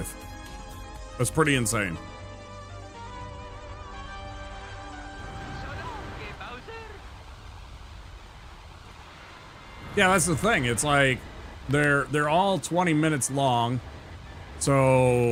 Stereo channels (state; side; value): identical; both; correlation 1.00